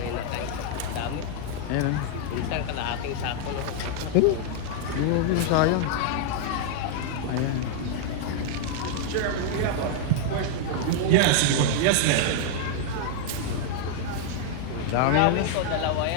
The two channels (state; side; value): different; both; correlation 0.00